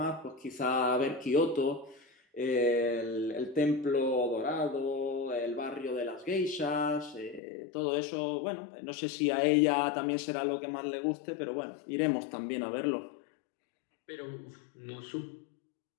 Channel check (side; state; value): right; drops out; at 7.4 s